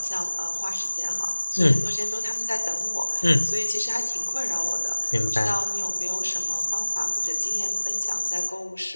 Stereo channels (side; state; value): both; inverted; correlation -1.00